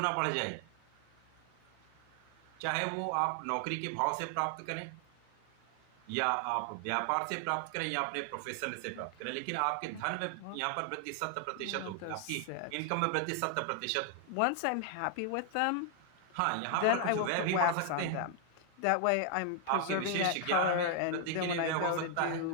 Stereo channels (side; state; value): both; different; correlation 0.00